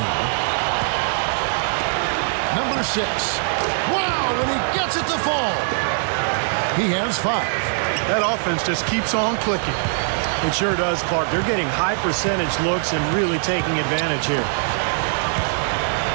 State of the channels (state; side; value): silent; left; 63 dB below the other